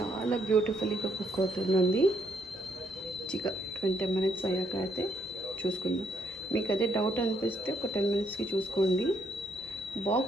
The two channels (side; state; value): both; normal; correlation 0.72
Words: బ్యూటిఫుల్గా కుక్ అవుతుందండి. 20 minutes అయ్యాక అయితే చూసుకుందాం. మీకు అదే డౌట్ అనిపిస్తే ఒక 10 minutesకి చూసుకోండి.